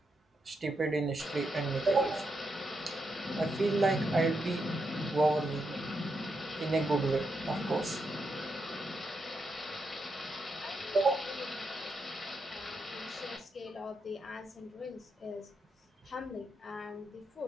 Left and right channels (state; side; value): normal; both; correlation 0.83